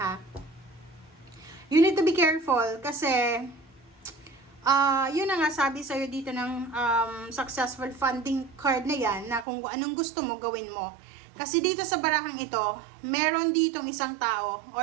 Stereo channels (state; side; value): drops out; left; at 9.5 s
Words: ha. You need to be careful kasi yun na nga sabi sa'yo dito ng successful funding card na yan, na kung anong gusto mo gawin mo. Kasi dito sa barahang ito, meron ditong isang tao,